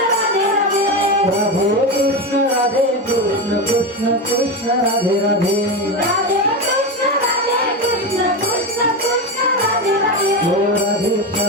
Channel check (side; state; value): both; normal; correlation 0.17